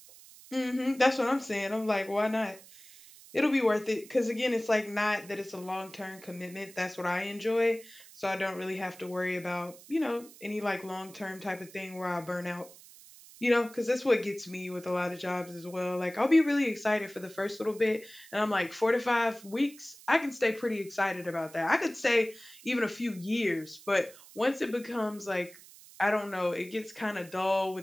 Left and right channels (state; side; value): noise; right; hiss, 20 dB below the sound